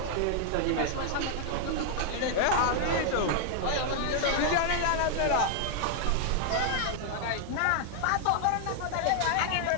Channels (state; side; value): different; both; correlation 0.00